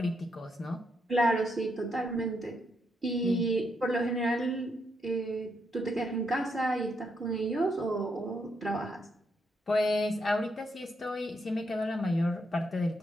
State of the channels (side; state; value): both; normal; correlation 0.79